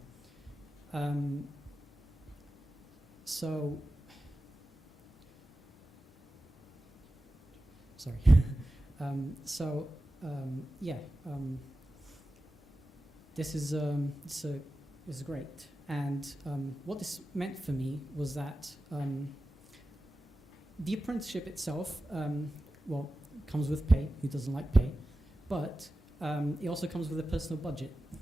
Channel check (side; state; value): both; normal; correlation 0.94